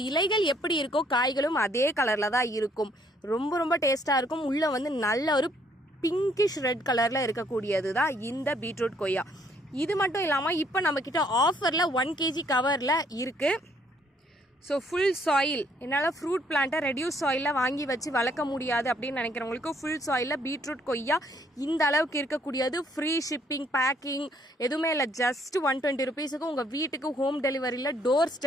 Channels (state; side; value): normal; both; correlation 0.67